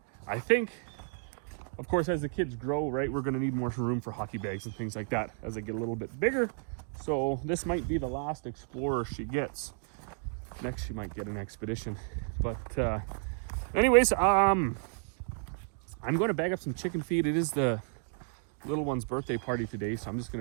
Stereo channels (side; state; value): left; silent; 56 dB below the other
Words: I think, of course, as the kids grow, right, we're going to need more room for hockey bags and things like that as they get a little bit bigger. So this might be the last Explorer she gets. Next, she might get an Expedition. But anyways, I'm going to bag up some chicken feed. It is the little one's birthday party today, so I'm just going